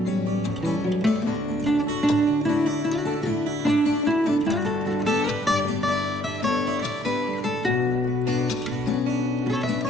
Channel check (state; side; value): normal; both; correlation 0.64